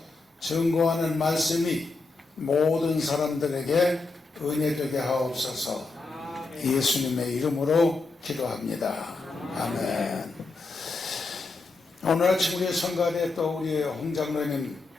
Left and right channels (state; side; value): quieter; right; 3.6 dB